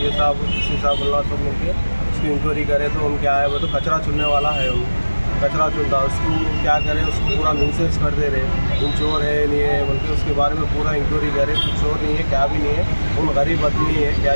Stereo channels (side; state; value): both; inverted; correlation -1.00